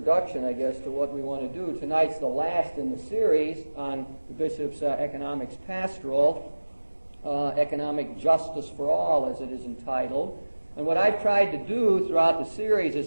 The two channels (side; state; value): both; inverted; correlation -1.00